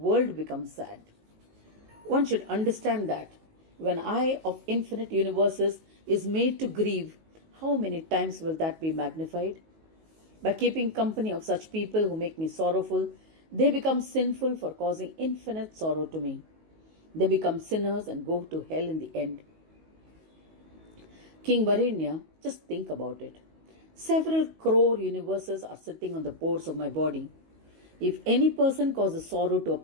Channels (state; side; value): late; left; 19 ms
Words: becomes sad. One should understand that when I of infinite universes is made to grieve, how many times will that be magnified? By keeping company of such people who make me sorrowful, they become sinful for causing infinite sorrow to me. They become sinners and go to hell in the end. King Varenya, just think about it. Several crore universes are sitting on the pores of my body. If any person causes sorrow to a